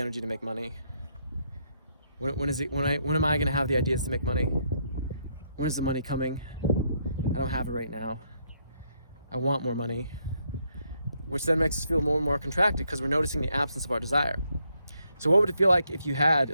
to make money. When am I gonna have the ideas to make money? When is the money coming? I don't have it right now. I want more money, which then makes us feel more and more contracted because we're noticing the absence of our desire. So what would it feel like if you had,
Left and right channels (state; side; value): inverted; both; correlation -0.75